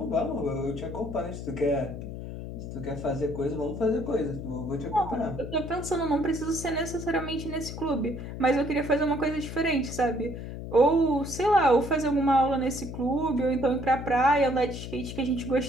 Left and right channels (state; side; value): noise; left; hum, 8 dB below the sound